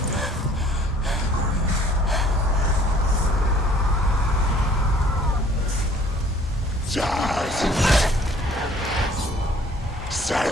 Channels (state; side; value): normal; both; correlation 0.56